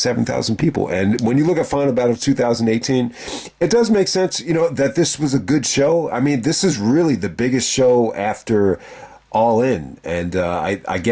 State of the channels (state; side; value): identical; both; correlation 1.00